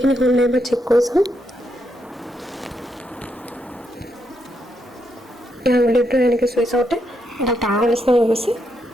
হ'ল নাই এবাৰ চেক কৰি চাম। আঙুলিটো এনেকৈ চুই চাওঁতে এটা টাৱাৰ নিচিনা হৈ গৈছে।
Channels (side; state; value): both; normal; correlation 0.80